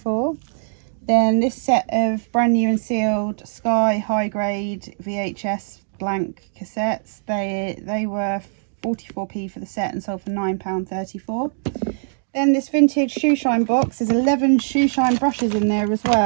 Then this set of brand new and sealed Sky high grade VHS blank cassettes, they were 44p for the set and sold for £9.34. Then this vintage shoe shine box, there's 11 shoe shine brushes in there as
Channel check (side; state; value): left; silent; digital silence